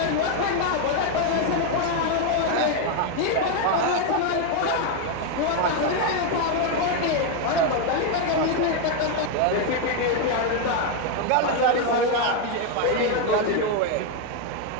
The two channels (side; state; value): both; different; correlation 0.01